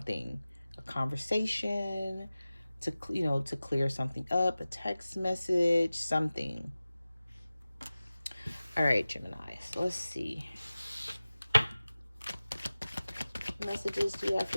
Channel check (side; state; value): both; inverted; correlation -0.97